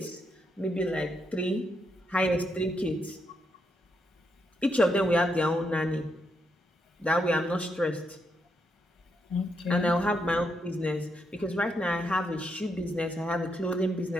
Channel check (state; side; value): normal; both; correlation 0.80